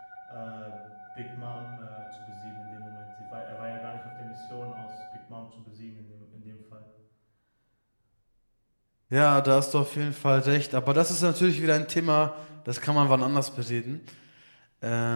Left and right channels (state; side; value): inverted; both; correlation -1.00